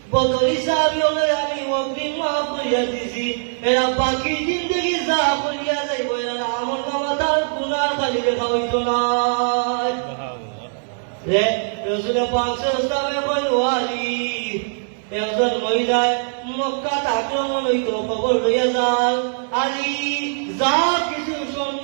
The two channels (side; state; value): left; silent; digital silence